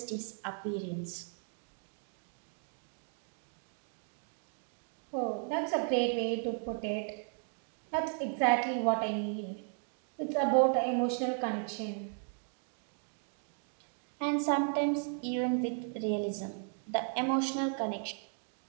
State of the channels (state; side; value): silent; left; 54 dB below the other